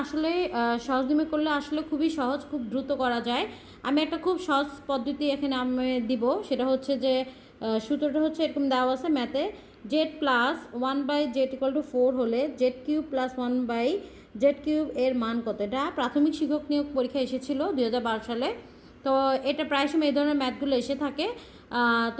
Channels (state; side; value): identical; both; correlation 1.00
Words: আসলে সহজনির্ণয় করলে আসলে খুবই সহজ, খুব দ্রুত করা যায়। আমি একটা খুব সহজ পদ্ধতি এখানে আমি দিব, সেটা হচ্ছে যে সূত্রটা হচ্ছে এরকম দেওয়া আছে ম্যাথে, জেড প্লাস 1/z=4 হলে z³ + 1/z³ এর মান কত। এটা প্রাথমিক শিক্ষক নিয়োগ পরীক্ষা এসেছিল 2012 সালে। তো এটা প্রায় সময় এই ধরনের ম্যাথগুলো এসে থাকে।